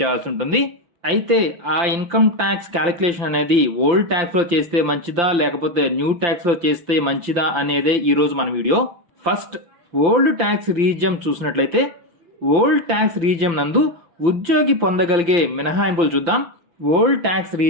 చేయాల్సి ఉంటుంది. అయితే ఆ ఇన్కమ్ ట్యాక్స్ క్యాలిక్యులేషన్ అనేది ఓల్డ్ ట్యాక్స్ లో చేస్తే మంచిదా లేకపోతే న్యూ ట్యాక్స్ లో చేస్తే మంచిదా అనేదే ఈరోజు మన వీడియో. ఫస్ట్ ఓల్డ్ ట్యాక్స్ రీజియం చూసినట్లయితే ఓల్డ్ ట్యాక్స్ రీజియం నందు ఉద్యోగి పొందగలిగే మినహాయింపులు చూద్దాం. ఓల్డ్ ట్యాక్స్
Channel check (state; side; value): late; left; 5.8 ms